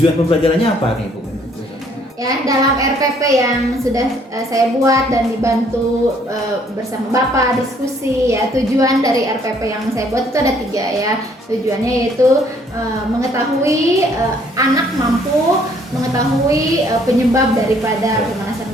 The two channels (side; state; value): both; normal; correlation 0.63